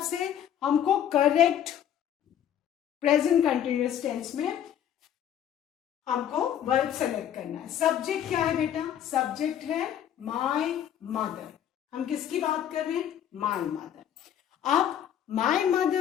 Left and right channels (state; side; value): quieter; right; 10.0 dB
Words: से हमको करेक्ट प्रेजेंट कंटिन्यूअस टेंस में हमको वर्ब सेलेक्ट करना है. सब्जेक्ट क्या है बेटा? सब्जेक्ट है माय मदर. हम किसकी बात कर रहे हैं? My mother. अब माय